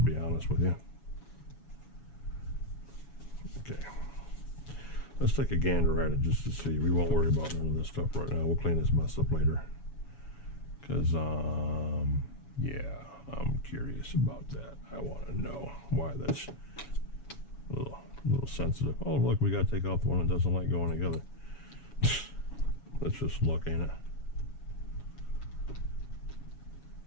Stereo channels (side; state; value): right; late; 7.1 ms